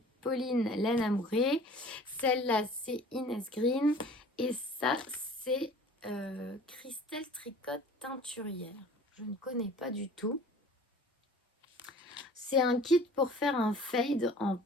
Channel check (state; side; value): normal; both; correlation 0.46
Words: Pauline Laine Amourée. Celle-là, c'est Inès Green. Et ça, c'est... Christelle Tricotte Teinturière. Je ne connais pas du tout. C'est un kit pour faire un fade en